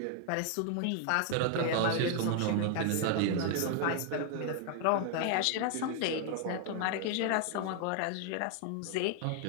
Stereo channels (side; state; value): both; different; correlation 0.00